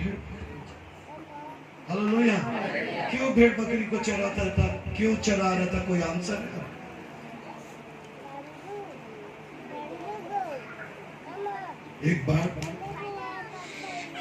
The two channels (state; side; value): identical; both; correlation 1.00